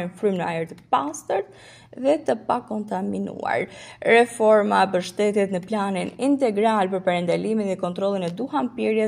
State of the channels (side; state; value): both; identical; correlation 1.00